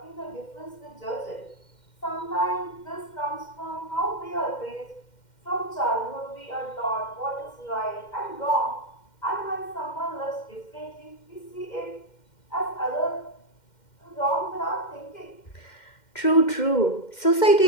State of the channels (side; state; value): right; late; 2.1 ms